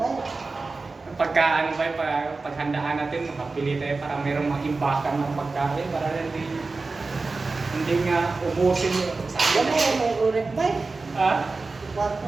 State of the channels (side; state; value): left; quieter; 3.8 dB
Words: Pagka ano ba, paghandaan natin, makapili tayo para mayroong mag-imbakan ng pagkain para hindi nga ubusin yung sa Yan mo, may ulit ba? Ha?